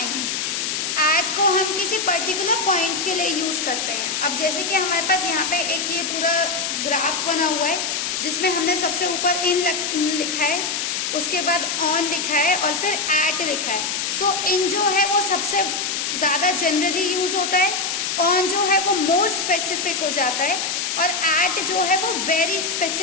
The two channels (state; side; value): noise; left; hiss, 1 dB below the sound